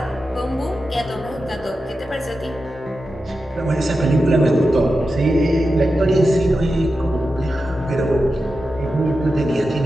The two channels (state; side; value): normal; both; correlation 0.91